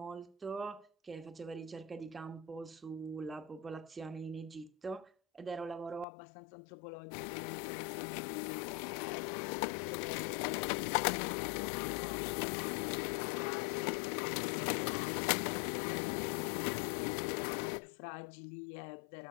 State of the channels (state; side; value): drops out; right; at 6.1 s